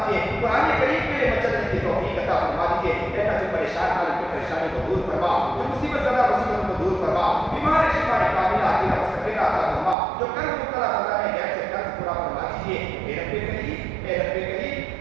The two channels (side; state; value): left; drops out; at 10.0 s